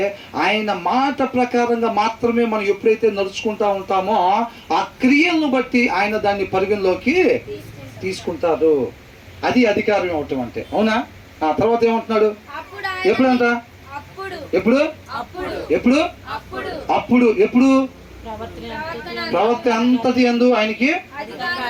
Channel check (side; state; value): both; identical; correlation 1.00